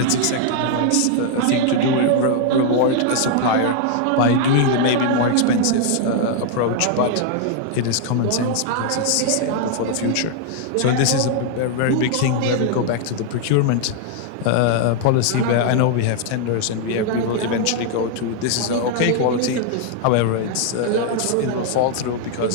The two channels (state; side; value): different; both; correlation 0.00